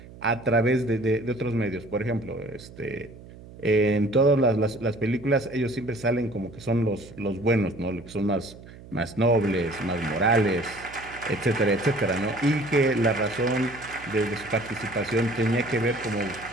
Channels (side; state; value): right; noise; hum, 18 dB below the sound